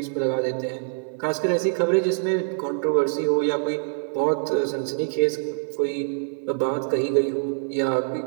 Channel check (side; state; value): left; silent; 62 dB below the other